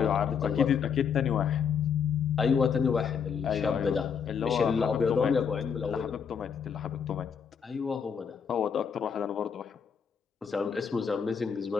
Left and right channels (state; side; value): quieter; right; 6.8 dB